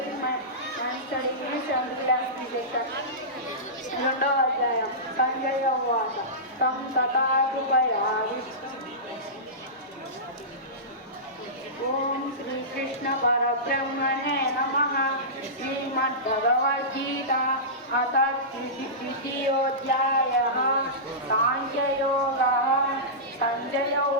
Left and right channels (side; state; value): both; normal; correlation -0.19